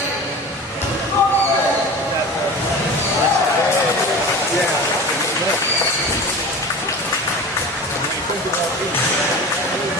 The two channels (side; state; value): both; normal; correlation 0.34